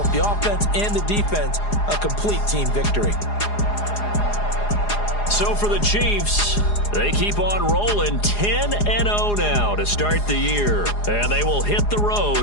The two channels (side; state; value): right; late; 4.8 ms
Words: the offense and the defense, a complete team victory. So for the Chiefs, they keep on rolling 10-0 now to start the year. And they will hit the